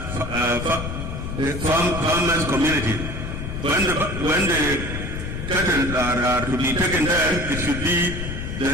farmers community. When the cattle are to be taken there, it should be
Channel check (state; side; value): noise; left; rumble, 6 dB below the sound